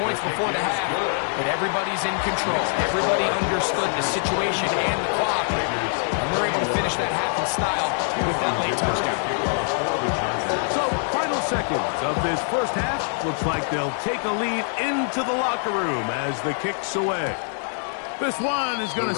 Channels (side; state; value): right; silent; 56 dB below the other